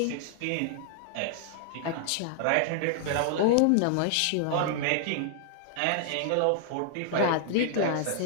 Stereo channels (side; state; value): both; different; correlation -0.01